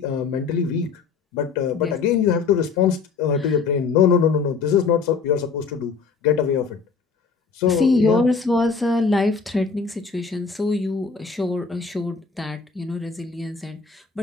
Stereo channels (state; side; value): quieter; right; 5.1 dB